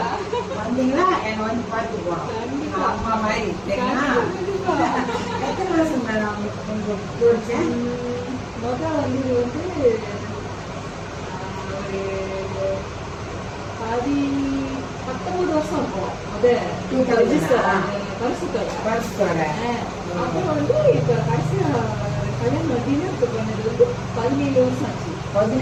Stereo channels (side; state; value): both; identical; correlation 1.00